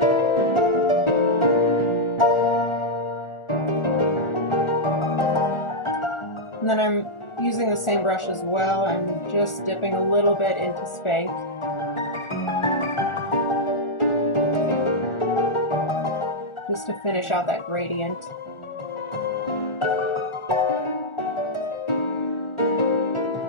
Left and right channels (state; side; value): late; right; 1.4 ms